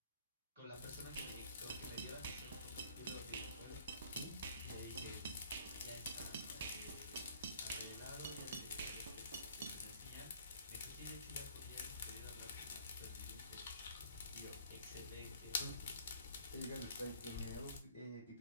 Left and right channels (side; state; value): both; inverted; correlation -0.53